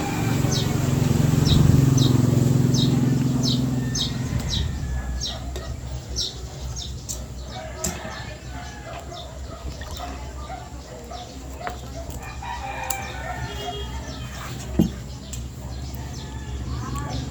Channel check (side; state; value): both; identical; correlation 1.00